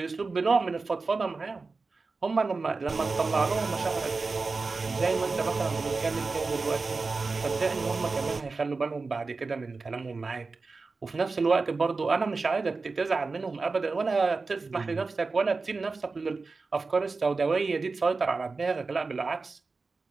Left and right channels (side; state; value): left; quieter; 4.0 dB